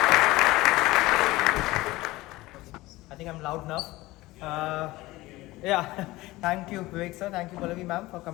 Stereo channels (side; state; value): right; quieter; 19.1 dB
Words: I think I'm loud enough. Yeah, thank you Vivek sir, thank you Pallavi ma'am for